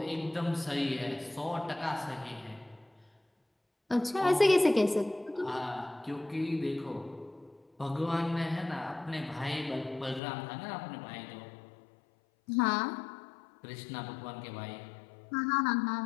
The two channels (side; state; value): right; drops out; at 10.2 s